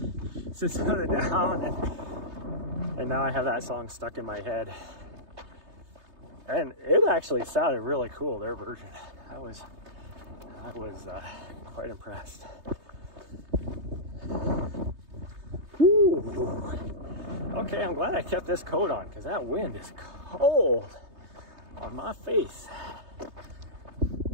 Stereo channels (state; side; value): late; left; 3.3 ms